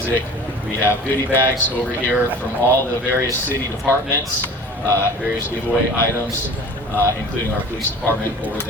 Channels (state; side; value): normal; both; correlation 0.41